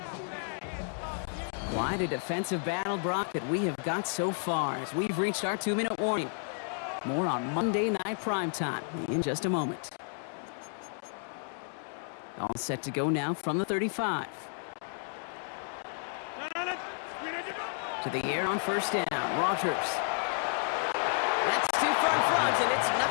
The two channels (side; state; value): right; silent; 56 dB below the other